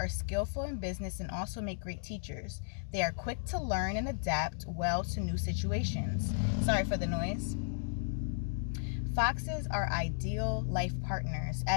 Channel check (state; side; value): silent; right; digital silence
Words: skillful in business and also make great teachers. They are quick to learn and adapt well to new situations. Sorry for the noise. Foxes are ideal life partners